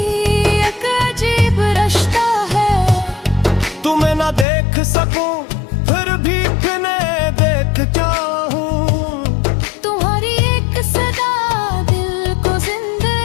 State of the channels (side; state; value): right; drops out; at 4.5 s